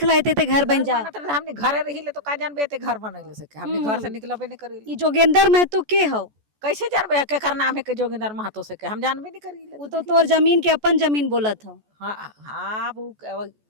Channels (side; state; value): left; late; 14 ms